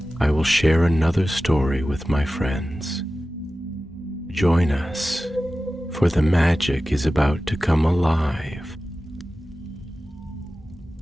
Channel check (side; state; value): both; normal; correlation 0.95